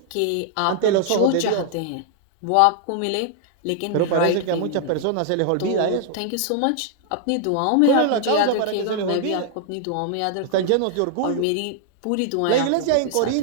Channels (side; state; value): both; different; correlation 0.00